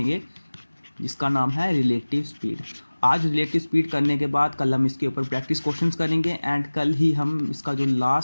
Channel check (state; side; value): inverted; both; correlation -1.00